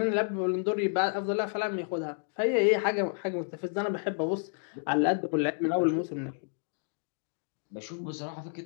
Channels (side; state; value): right; silent; digital silence